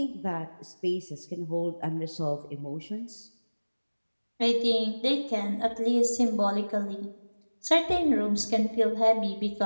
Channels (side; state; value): both; inverted; correlation -1.00